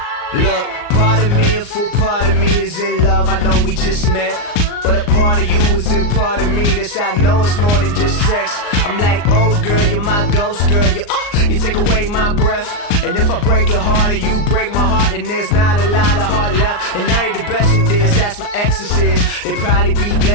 Look, part of me, a full part of me is in love. I know we just met, but a part of you is in part of me. This I know it's more than just sex. I'm like, oh girl, you're my ghost girl. You take away my breath. And if I break your heart and you break my heart, then there's not a lot of heart left. And I ain't the best at this, that's my exorcist. They probably be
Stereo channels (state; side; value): late; right; 39 ms